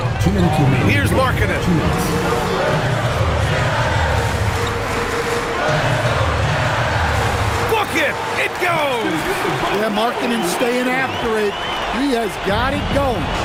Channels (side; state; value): both; identical; correlation 1.00